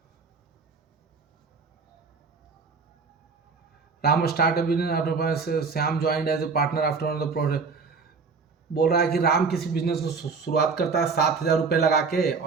Ram start business, Shyam joined as a partner after the project. बोल रहा है कि राम किसी बिजनेस को शुरुआत करता है 7,000 रुपये लगा के,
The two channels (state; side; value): quieter; left; 4.9 dB